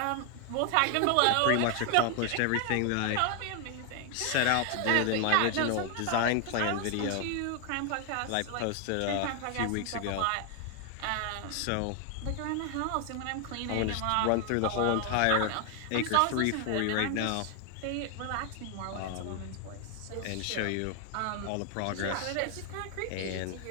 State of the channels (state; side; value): different; both; correlation 0.00